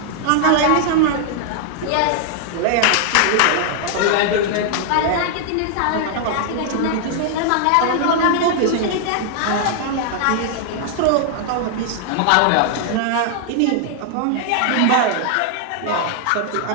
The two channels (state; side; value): different; both; correlation 0.00